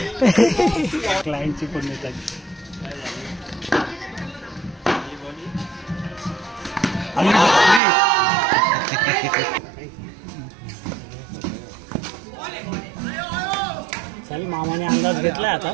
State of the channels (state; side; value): drops out; left; at 7.8 s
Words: क्लायंटची पण येतात. चल मामाने अंदाज घेतलाय आता.